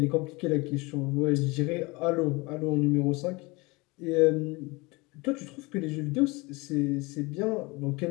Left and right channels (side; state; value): right; quieter; 25.1 dB